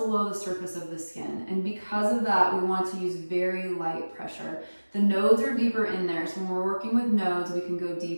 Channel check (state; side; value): inverted; both; correlation -1.00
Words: the surface of the skin. And because of that, we want to use very light pressure. The nodes are deeper in there. So when we're working with nodes, we can go